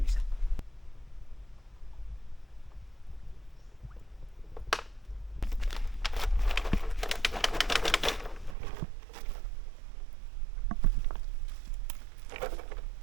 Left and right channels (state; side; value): drops out; left; at 8.6 s